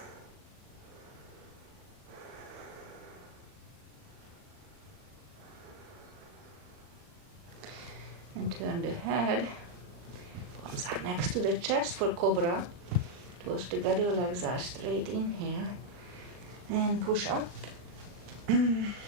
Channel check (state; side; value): late; left; 39 ms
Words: And turn the head. Palms are next to the chest for cobra. Toes together, legs are straight. Inhale. And push up.